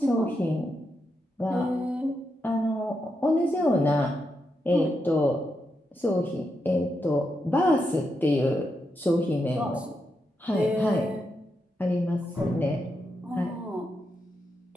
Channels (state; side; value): normal; both; correlation 0.84